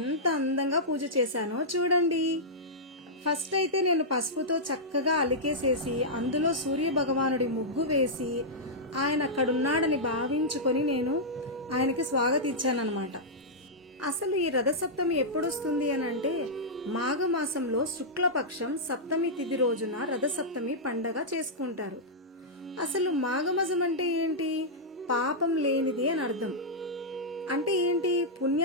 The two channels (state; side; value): normal; both; correlation -0.09